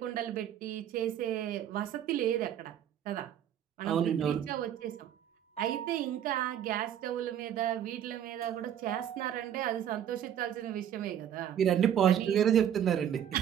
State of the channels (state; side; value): quieter; left; 9.9 dB